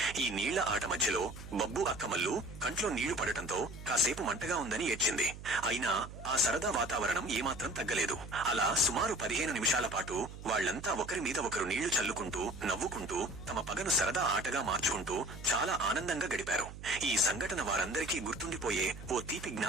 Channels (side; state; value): right; noise; hum, 13 dB below the sound